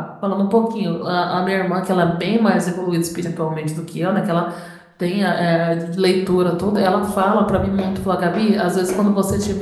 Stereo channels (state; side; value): identical; both; correlation 1.00